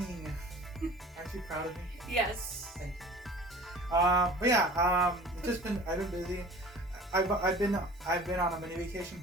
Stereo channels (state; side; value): normal; both; correlation 0.43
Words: Aren't you proud of me? Yes. Thank you. But yeah, I've been busy. I've been on a mini vacation,